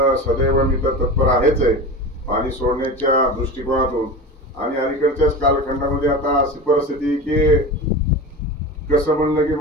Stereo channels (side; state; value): both; normal; correlation 0.29